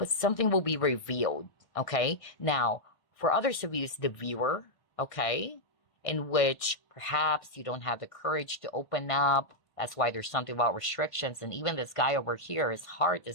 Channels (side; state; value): right; late; 1.6 ms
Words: something will be revealed, okay? Now, for others of you, it's the viewer, okay? in which perhaps you don't have the courage to open up. That's why there's something about restrictions. And even this guy over here, his heart